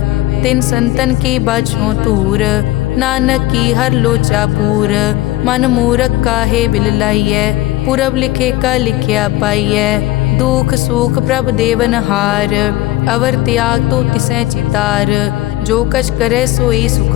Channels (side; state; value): right; quieter; 17.0 dB